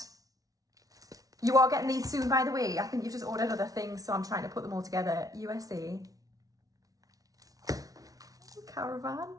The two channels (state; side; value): late; left; 0.18 ms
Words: You are getting these soon, by the way. I think you've just ordered other things, so I'm trying to put them all together. USA. Caravan.